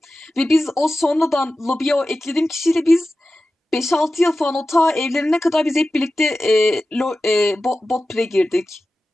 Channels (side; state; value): both; normal; correlation 0.94